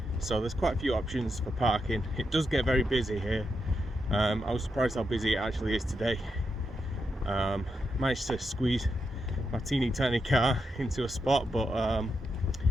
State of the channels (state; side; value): normal; both; correlation 0.84